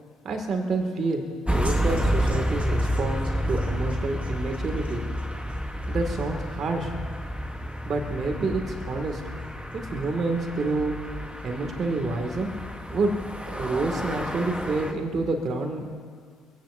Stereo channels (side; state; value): both; normal; correlation 0.83